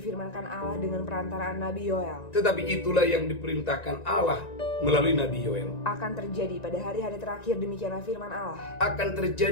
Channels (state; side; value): late; right; 1.9 ms